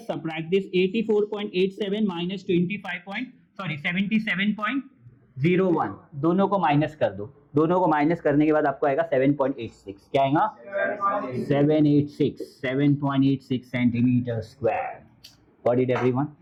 subtract this 84.87 minus 77.01, दोनों को माइनस कर दो। दोनों को माइनस करने के बाद आपको आएगा 7.86। क्या आएगा? 7.86 centimetre square. Got it everyone?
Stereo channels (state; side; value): identical; both; correlation 1.00